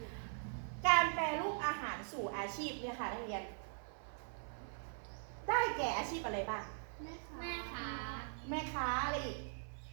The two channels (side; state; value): left; silent; 50 dB below the other